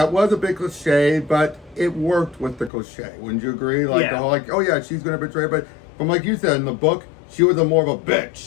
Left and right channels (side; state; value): right; drops out; at 2.7 s